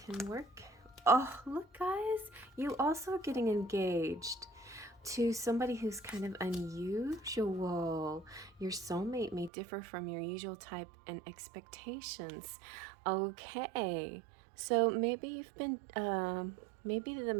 work. Oh, look guys, you also are getting engaged to somebody who's kind of unusual. Your soulmate may differ from your usual type and expectations. Okay. So maybe you've been, maybe the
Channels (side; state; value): left; drops out; at 9.5 s